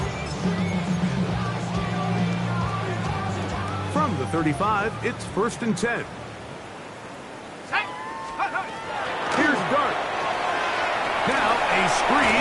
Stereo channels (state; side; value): identical; both; correlation 1.00